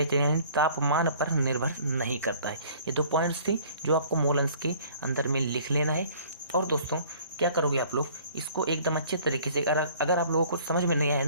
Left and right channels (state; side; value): inverted; both; correlation -0.53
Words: यानी तापमान पर निर्भर नहीं करता है। ये 2 पॉइंट्स थी जो आपको मोल अंश के अंदर में लिख लेना है। और दोस्तों क्या करोगे आप लोग, इसको एकदम अच्छे तरीके से अगर आप लोगों को समझ में नहीं आया